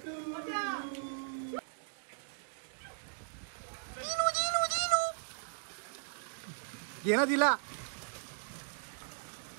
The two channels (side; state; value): left; silent; digital silence